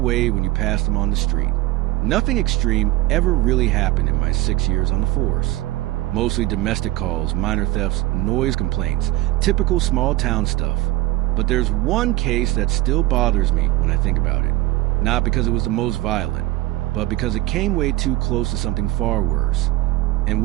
when you pass them on the street. Nothing extreme ever really happened in my 6 years on the force. Mostly domestic calls, minor thefts, noise complaints, typical small town stuff. But there's one case that still bothers me when I think about it. Not because it was the most violent, but because it came way too close to something far worse. And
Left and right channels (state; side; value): quieter; left; 17.7 dB